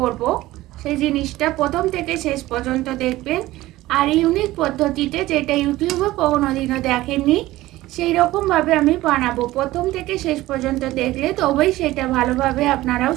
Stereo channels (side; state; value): left; quieter; 17.1 dB